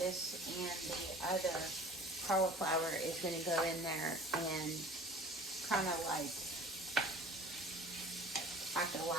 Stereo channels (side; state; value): both; normal; correlation 0.44